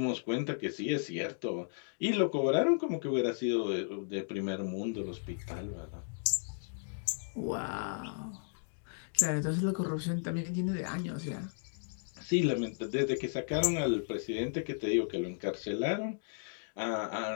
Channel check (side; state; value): right; silent; digital silence